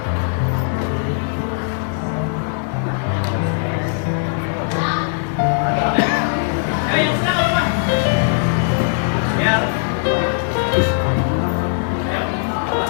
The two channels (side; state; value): right; silent; 66 dB below the other